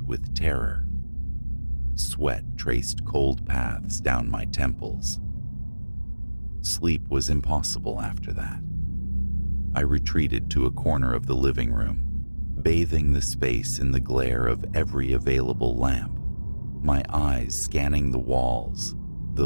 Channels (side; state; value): both; inverted; correlation -1.00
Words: with terror. Sweat traced cold paths down my temples. Sleep was impossible after that. I retreated to a corner of the living room, bathing the space in the glare of every available lamp, my eyes scanning the walls,